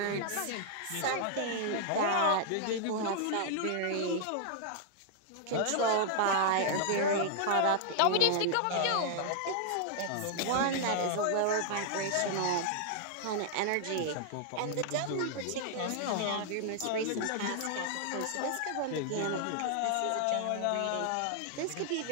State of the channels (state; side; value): different; both; correlation -0.01